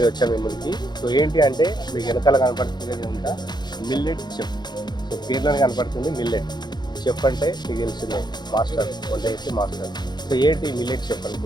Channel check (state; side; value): late; right; 0.21 ms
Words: వచ్చాము మీ ముందుకి. సో ఏంటి అంటే మీకు వెనకాల కనపడుతుంది అంతా మిల్లెట్ చెఫ్. సో పేర్లోనే కనపడుతుంది మిల్లెట్ చెఫ్ అంటే మీకు తెలిసిందే, మాస్టర్, వంట చేసే మాస్టర్. సో ఏంటి మిల్లెట్ చెఫ్